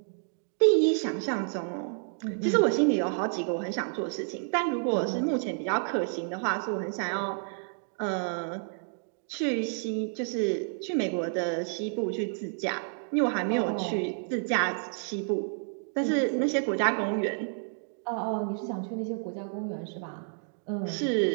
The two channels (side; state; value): left; silent; 58 dB below the other